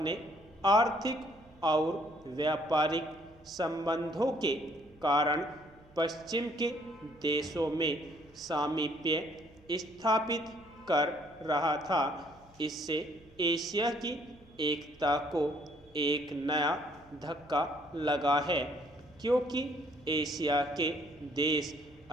आर्थिक और व्यापारिक संबंधों के कारण पश्चिम के देशों में सामीप्य स्थापित कर रहा था। इससे एशिया की एकता को एक नया धक्का लगा है, क्योंकि एशिया के देश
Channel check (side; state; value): right; noise; hum, 27 dB below the sound